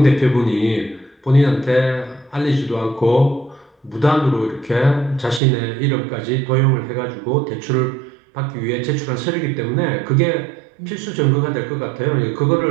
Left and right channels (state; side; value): drops out; left; at 5.4 s